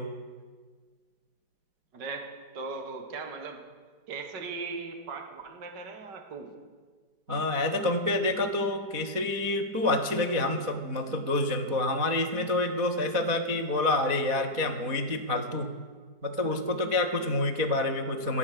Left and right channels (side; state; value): left; late; 4.2 ms